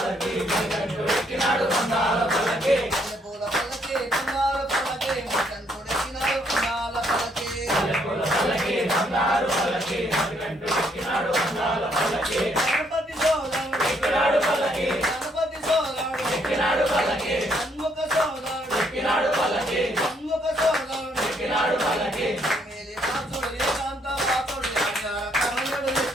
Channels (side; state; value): both; normal; correlation 0.70